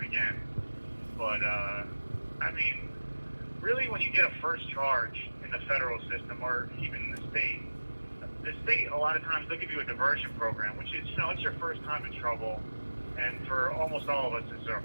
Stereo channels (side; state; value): both; inverted; correlation -1.00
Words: again. But, I mean, really, when you get a first charge in the federal system, or even in the state, a lot of times they'll give you a diversion program, which is, you know, it's your first time in trouble, and for almost all of us, it's our